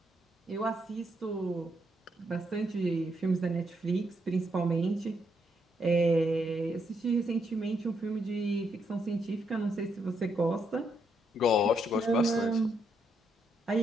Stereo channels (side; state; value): both; normal; correlation 0.77